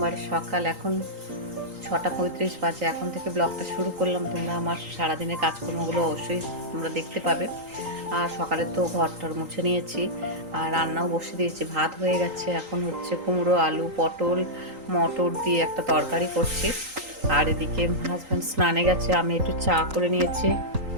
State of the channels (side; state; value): left; late; 3.8 ms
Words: সকাল। এখন 6:35 বাজে। এখন থেকে ব্লগটা শুরু করলাম। তোমরা আমার সারাদিনের কাজকর্মগুলো অবশ্যই তোমরা দেখতে পাবে। আর সকালে তো ঘরটর মুছে নিয়েছি আর রান্নাও বসে দিয়েছি। ভাত হয়ে গেছে। এখন হচ্ছে কুমড়ো, আলু, পটল, মটর দিয়ে একটা তরকারি করছি। আর এদিকে হাজব্যান্ড স্নানে গেছে, আমি একটু চা করে নিয়েছি।